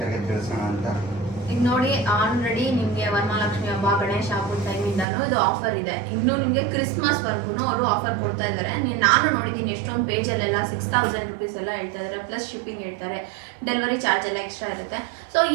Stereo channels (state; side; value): drops out; left; at 5.1 s